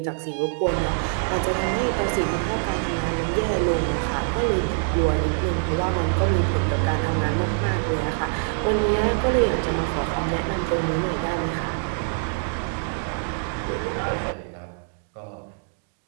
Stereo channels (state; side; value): silent; left; 62 dB below the other